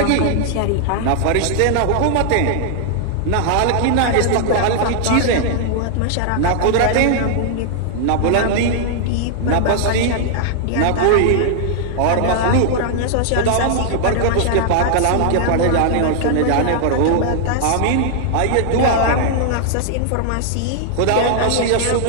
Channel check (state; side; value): different; both; correlation 0.00